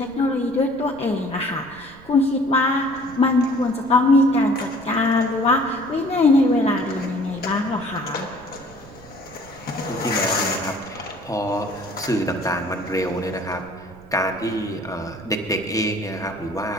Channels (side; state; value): right; noise; rumble, 22 dB below the sound